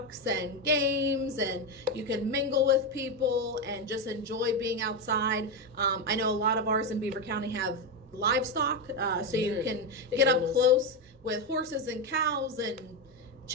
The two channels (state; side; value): normal; both; correlation 0.10